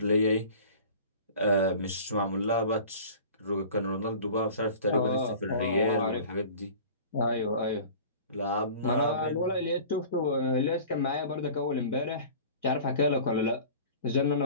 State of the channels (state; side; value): inverted; both; correlation -0.42